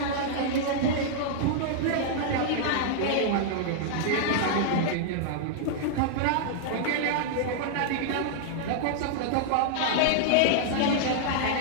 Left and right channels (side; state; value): both; different; correlation -0.01